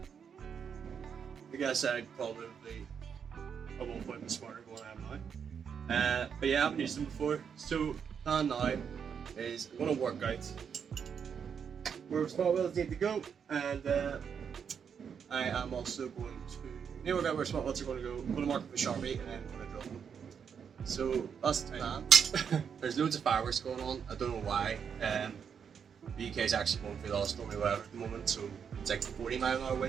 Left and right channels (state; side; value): quieter; left; 7.1 dB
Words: I guess I'd probably at one point be smarter than what I am now. But yeah, I haven't used them before. So plan now is I'm gonna work out where spot welds need to go, and I am also going to work out where spot welds are going to go. I'm going to mark up the Sharpie and then I'm going to drill them. So that's the plan. There's loads of fireworks going on. I don't know why. The UK is actually going through the stormy weather at the moment, so it's like 40-mile-an-hour